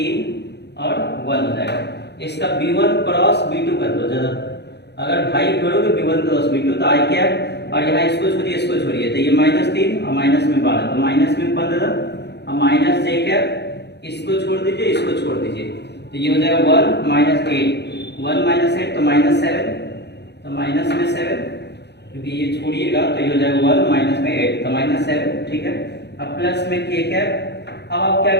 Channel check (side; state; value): right; late; 0.49 ms